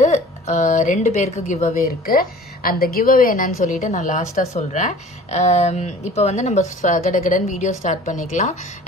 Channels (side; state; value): both; normal; correlation 0.46